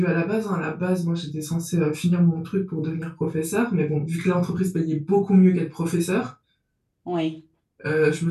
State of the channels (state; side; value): identical; both; correlation 1.00